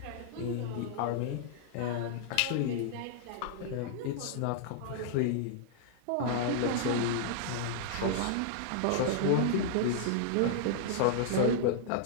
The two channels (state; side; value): different; both; correlation -0.01